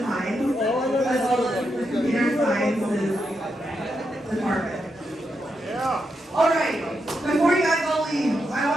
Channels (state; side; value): normal; both; correlation 0.84